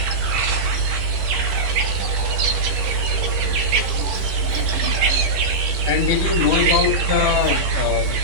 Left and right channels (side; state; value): left; late; 11 ms